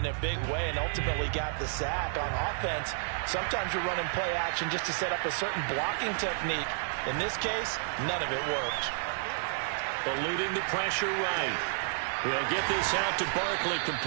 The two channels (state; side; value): silent; left; digital silence